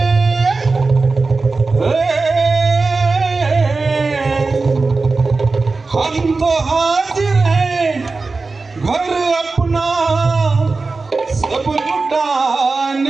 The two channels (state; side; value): quieter; left; 3.9 dB